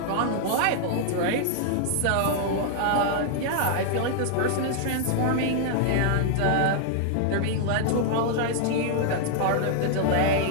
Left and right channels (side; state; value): both; different; correlation -0.01